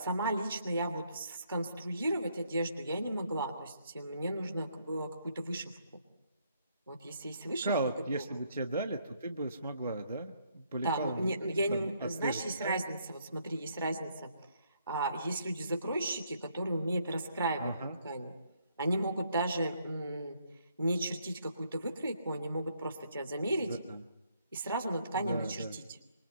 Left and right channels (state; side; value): inverted; both; correlation -0.70